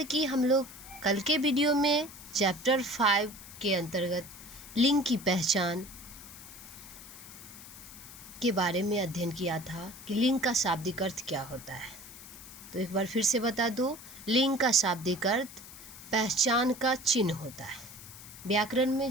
कि हम लोग कल के वीडियो में चैप्टर 5 के अंतर्गत लिंग की पहचान के बारे में अध्ययन किया था कि लिंग का शाब्दिक अर्थ क्या होता है। तो एक बार फिर से बता दूं, लिंग का शाब्दिक अर्थ पहचान का चिन्ह होता है। व्याकरण में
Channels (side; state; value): left; noise; hiss, 16 dB below the sound